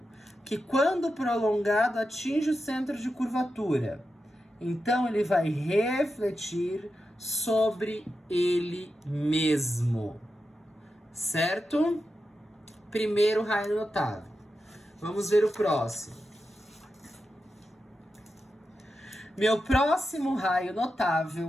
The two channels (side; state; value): both; normal; correlation 0.89